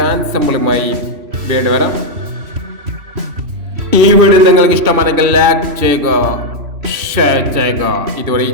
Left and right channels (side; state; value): left; late; 2.6 ms